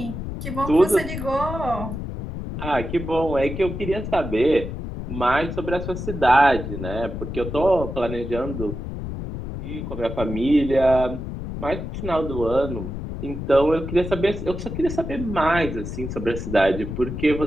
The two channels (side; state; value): left; noise; rumble, 6 dB below the sound